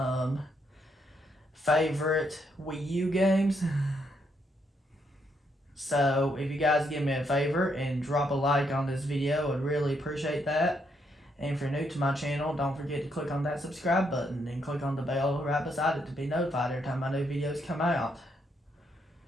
favorite Wii U games. So if you guys give me a favor and drop a like on this video, I'd really appreciate that. And if you're new to my channel, don't forget to click on that subscribe button and click on the bell right beside it to be notified every time my new videos come out.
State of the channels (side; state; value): both; normal; correlation 0.75